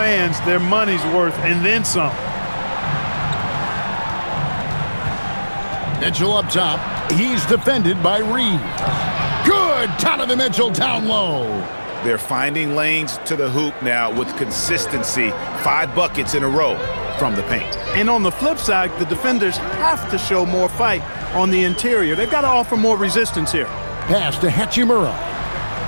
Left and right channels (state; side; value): inverted; both; correlation -1.00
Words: their money's worth and then some. Mitchell up top. He's defended by Reed. Good! Donovan Mitchell down low. They're finding lanes to the hoop now with consistency. 5 buckets in a row from the paint. And on the flip side, the defenders have to show more fight on the interior. They've got to offer more resistance here. Pass to Hachimura.